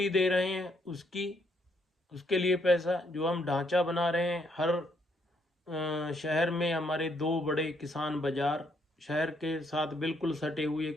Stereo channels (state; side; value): normal; both; correlation 0.72